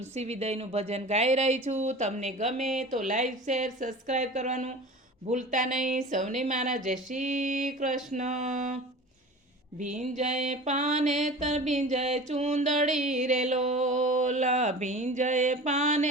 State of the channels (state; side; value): normal; both; correlation 0.37